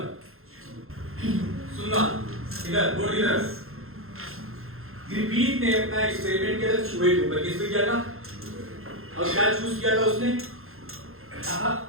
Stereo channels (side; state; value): left; late; 0.61 ms